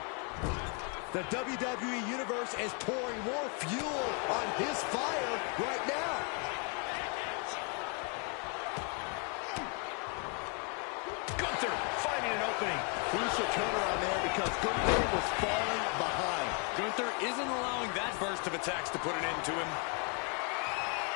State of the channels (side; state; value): right; quieter; 37.1 dB